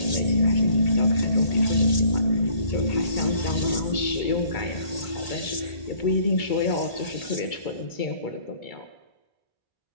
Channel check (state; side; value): late; right; 1.8 ms